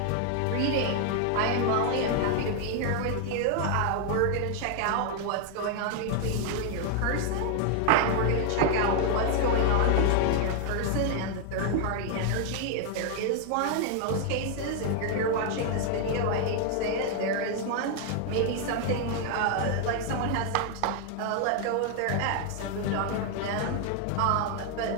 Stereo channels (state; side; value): different; both; correlation 0.00